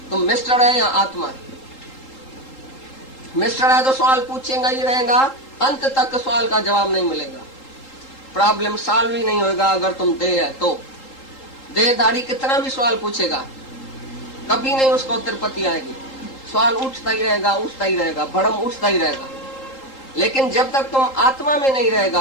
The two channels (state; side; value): late; right; 3.8 ms